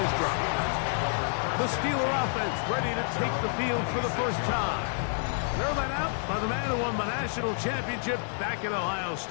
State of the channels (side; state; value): right; silent; 59 dB below the other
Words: this drive. The Steeler offense ready to take the field for the first time. They're led out by the man who won the national championship back at Ohio